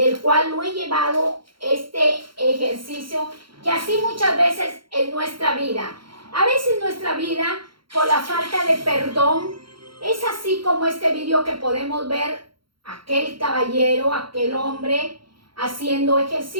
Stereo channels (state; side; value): late; left; 0.73 ms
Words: cual lo he llevado este ejercicio, que así muchas veces en nuestra vida. A veces nuestra vida, por la falta de perdón, es así como este vídeo que podemos ver, aquel caballero, aquel hombre haciendo